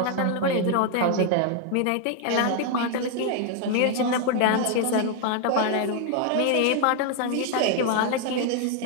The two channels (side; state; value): both; different; correlation 0.00